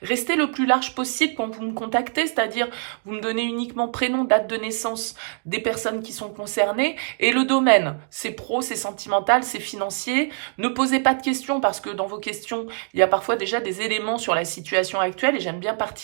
restez le plus large possible quand vous me contactez, c'est-à-dire vous me donnez uniquement prénom, date de naissance des personnes qui sont concernées et le domaine. C'est pro, c'est sentimental, c'est financier. Ne posez pas de questions parce que dans vos questions, il y a parfois déjà des éléments sur la situation actuelle et j'aime bien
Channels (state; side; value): silent; left; digital silence